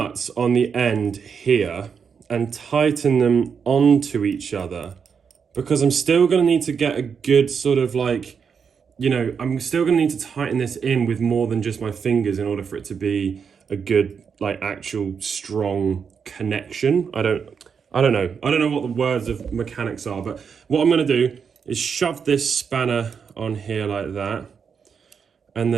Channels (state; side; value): quieter; left; 6.4 dB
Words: on the end here and tighten them onto each other, because I'm still going to need to get a good sort of like, you know, I'm still going to need to tighten this in with more than just my fingers in order for it to be a good, like, actual strong connection. I don't know what the words of mechanics are, but what I'm going to do is shove this spanner on here like that, and